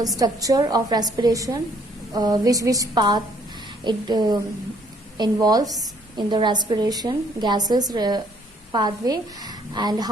structure of respiration, which path it involves in the respiration gases pathway, and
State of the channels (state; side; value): normal; both; correlation 0.64